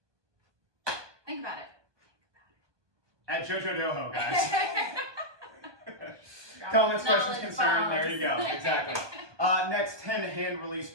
Think about it. At JoJo Doho, guys. Comments, questions, concern. There you go. Exactly. Next, 10 hand release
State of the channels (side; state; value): left; late; 1.2 ms